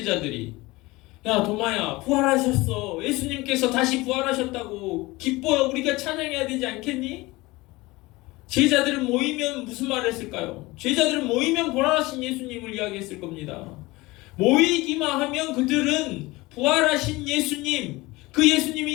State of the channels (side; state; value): right; quieter; 21.4 dB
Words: 야 도마야, 부활하셨어. 예수님께서 다시 부활하셨다고. 기뻐요. 우리가 찬양해야 되지 않겠니? 제자들은 모이면 무슨 말을 했을까요? 제자들은 모이면 부활하신 예수님을 이야기했을 겁니다. 모이기만 하면 그들은 부활하신 예수님, 그